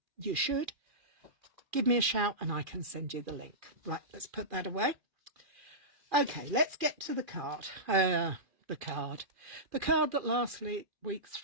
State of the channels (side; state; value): left; late; 2.4 ms